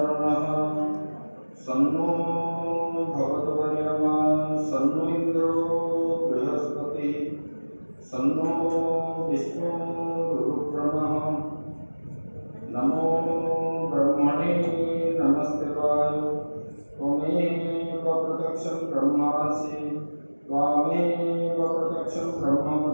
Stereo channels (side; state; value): both; inverted; correlation -1.00